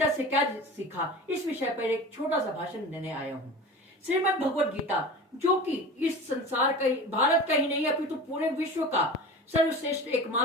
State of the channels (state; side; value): normal; both; correlation 0.34